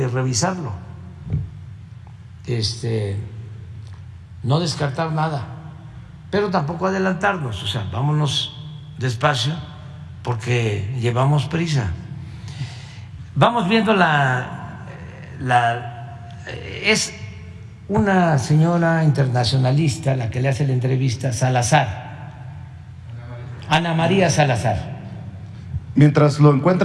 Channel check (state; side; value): identical; both; correlation 1.00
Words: revisarlo. No descartar nada, pero tampoco adelantarnos. O sea, vámonos despacio porque llevamos prisa. Vamos viendo es una señora internacionalista la que le hace la entrevista, Salazar, Ana María Salazar. Mientras lo